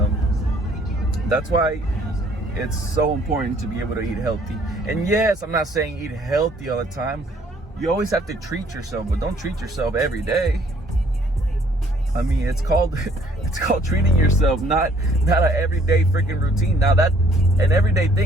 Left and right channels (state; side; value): normal; both; correlation 0.61